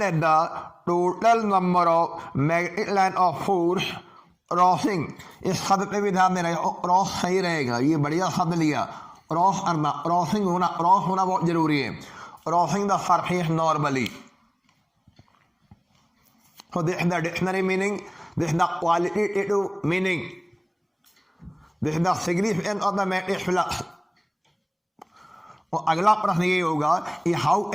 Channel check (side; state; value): both; identical; correlation 1.00